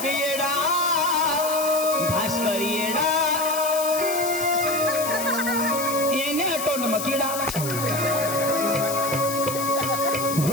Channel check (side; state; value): left; noise; hiss, 6 dB below the sound